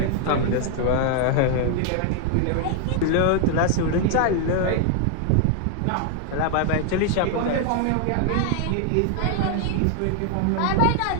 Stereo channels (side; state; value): both; different; correlation 0.00